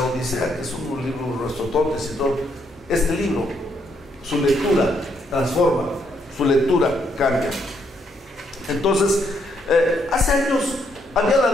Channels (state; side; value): normal; both; correlation 0.74